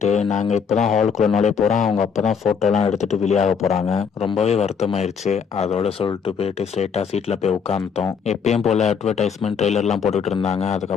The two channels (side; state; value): right; quieter; 6.4 dB